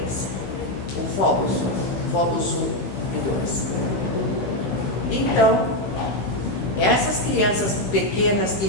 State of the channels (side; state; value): right; late; 15 ms